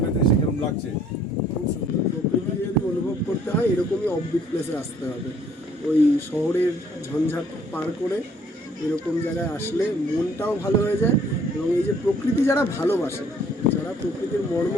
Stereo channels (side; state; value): both; normal; correlation 0.60